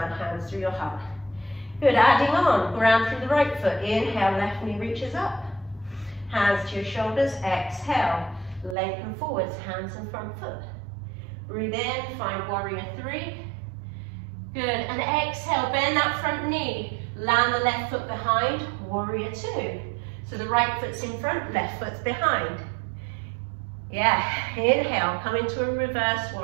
hands through your heart. Good, adding on. Ground through the right foot. Inhale, left knee reaches up. Hands to your shoulders, exhale, lengthen forwards, hands in front foot. Breathe in, find warrior three. Good, and exhale, bend that front knee. Land the left foot behind, warrior two. So the right foot's in front, left foot's behind. Yeah, inhale, come into a reverse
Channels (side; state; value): left; drops out; at 8.8 s